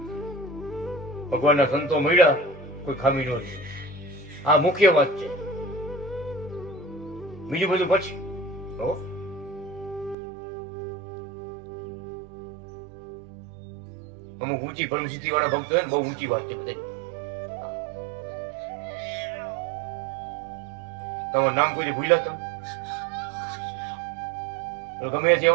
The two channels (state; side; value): drops out; left; at 10.2 s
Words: ભગવાનના સંતો મળ્યા, કોઈ ખામી ન છે. આ મુખ્ય વાત છે. બીજું બધું પછી. અમુક ઊંચી પરમસિદ્ધિ વાળા ભક્તો હોય ને, બહુ ઊંચી વાત છે બધા. તમારું નામ કોઈ ભૂલ્યા તમે? ગમે તે